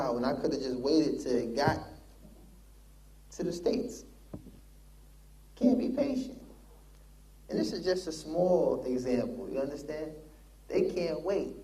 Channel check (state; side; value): identical; both; correlation 1.00